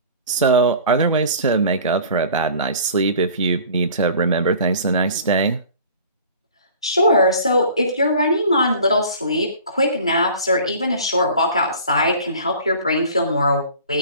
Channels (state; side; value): inverted; both; correlation -0.45